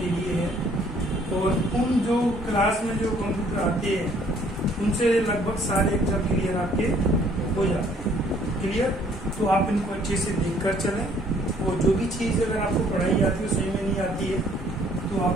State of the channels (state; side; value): normal; both; correlation 0.61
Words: के लिए है। और उन जो क्लास में जो कंप्यूटर आते हैं उनसे लगभग सारे एग्जाम क्लियर आपके हो जाते हैं। क्लियर? तो आप इनको अच्छे से देखकर चलें और जो भी चीज़ अगर आपको पढ़ाई आती है सही में नहीं आती है तो आप